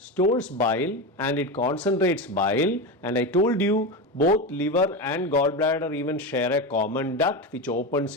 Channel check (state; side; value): normal; both; correlation 0.19